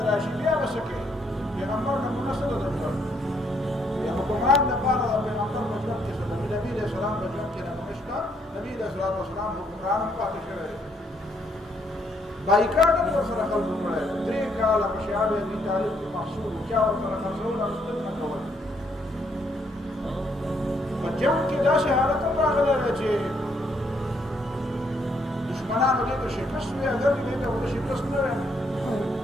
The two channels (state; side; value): normal; both; correlation 0.71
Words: راشي بیا به څه کوي پیغمبر نمونه څه ده د ژوند د حکمران دپاره د پیغمبر په ژوند کې څه ده نبي علیه السلام په ژوند کې نمونه شته. نبي علیه السلام حکمران هم پاتې شوی دی. بایکاټ هم ورسره خلکو کړی دی. 3 کاله په شیعه ابي طالب کې محصول چا ورسره خرڅول او نه کول. په جنګ کې داسې حالت هم راغلی دی چې دشمنانو دې ته شکست وی اگر دې ته ورته شکست نه وی